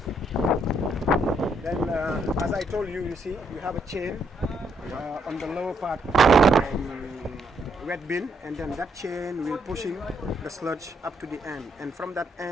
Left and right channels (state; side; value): normal; both; correlation 0.74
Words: Then, as I told you, you see, you have a chain on the lower part wet bin, and then that chain will pushing the sludge up to the end. And from that